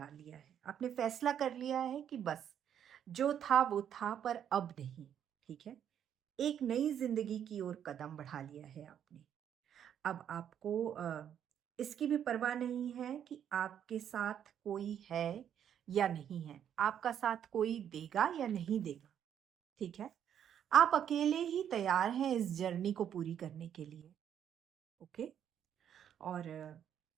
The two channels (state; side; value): quieter; left; 9.3 dB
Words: लिया है। आपने फैसला कर लिया है कि बस जो था वो था पर अब नहीं, ठीक है? एक नई ज़िंदगी की ओर कदम बढ़ा लिया है आपने। अब आपको इसकी भी परवाह नहीं है कि आपके साथ कोई है या नहीं है। आपका साथ कोई देगा या नहीं देगा, ठीक है? आप अकेले ही तैयार हैं इस जर्नी को पूरी करने के लिए, ओके? और